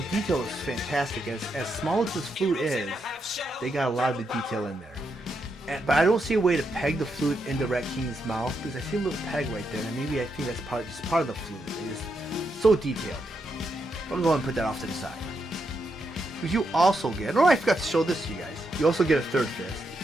detail is fantastic. As small as this flute is, they got a lot of the detail in there. But I don't see a way to peg the flute into Rat King's mouth because I see a little peg right there, and maybe I think that's just part of the flute. It's so detailed. I'm gonna go ahead and put that off to the side. Because you also get, oh, I forgot to show this to you guys. You also get a third fist, a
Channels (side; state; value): both; normal; correlation 0.82